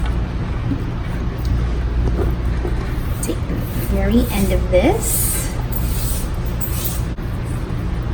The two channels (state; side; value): identical; both; correlation 1.00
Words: Take the very end of this,